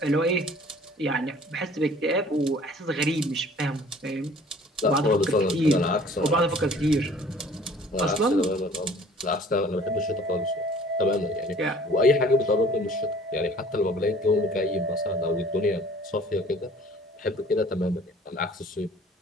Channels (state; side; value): normal; both; correlation 0.51